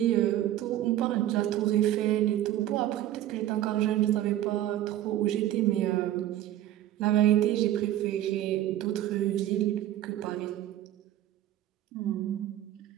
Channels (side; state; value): left; quieter; 12.9 dB